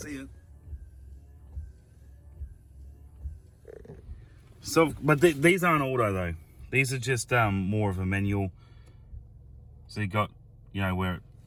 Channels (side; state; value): both; identical; correlation 1.00